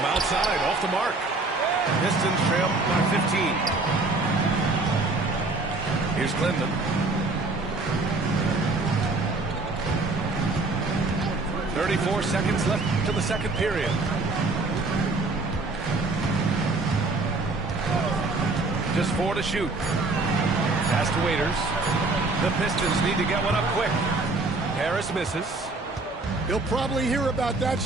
outside, off the mark. Pistons trail by 15. Here's Klinman. 34 seconds left to the second period. Just 4 to shoot. Pass to Waiters. The Pistons need to get one up quick. Harris misses. He'll probably hear about that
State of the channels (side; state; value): left; quieter; 3.4 dB